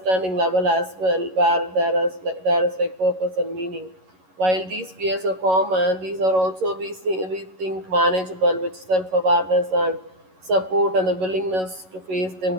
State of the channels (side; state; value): left; late; 11 ms